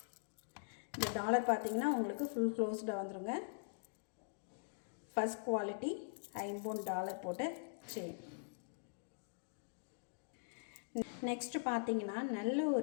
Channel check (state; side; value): silent; right; digital silence